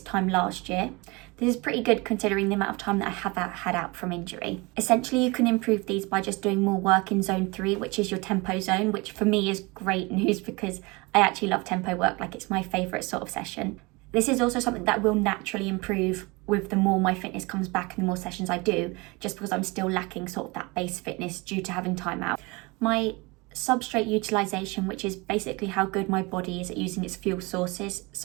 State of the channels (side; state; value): left; quieter; 25.8 dB